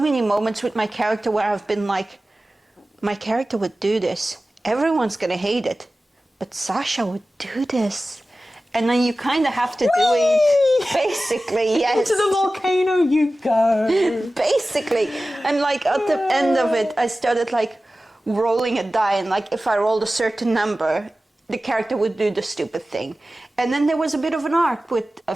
many moments with my character where I've been like, my character would do this. Everyone's going to hate it. But Sasha would do this. And then you kind of have to do it, basically, yes. Into the volcano you go. Basically. And like at the end of it, I started like rolling a die, and like if I rolled a certain number, the character would do the stupid thing. And then there was a bit of an arc with a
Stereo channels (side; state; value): both; normal; correlation 0.96